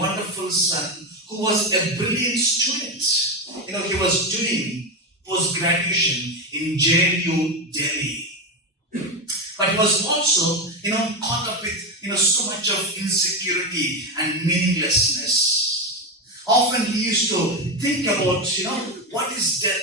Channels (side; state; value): both; normal; correlation 0.14